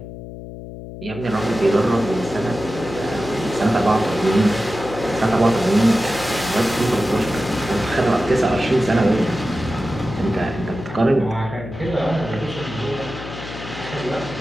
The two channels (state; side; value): noise; left; hum, 12 dB below the sound